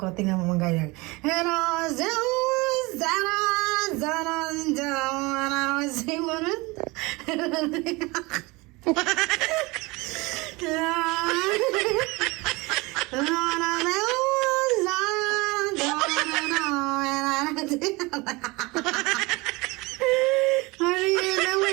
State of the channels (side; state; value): left; quieter; 24.2 dB